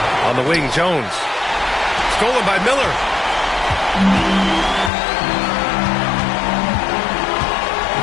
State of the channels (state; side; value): drops out; right; at 4.9 s